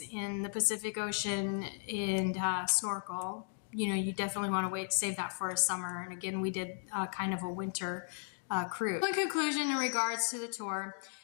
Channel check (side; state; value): right; silent; 54 dB below the other